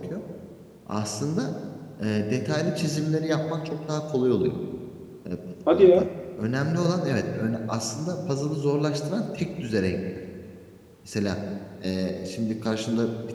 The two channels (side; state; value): both; identical; correlation 1.00